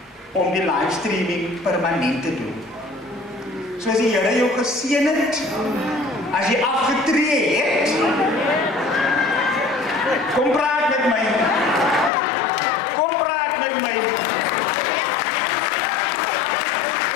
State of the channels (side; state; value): right; drops out; at 12.1 s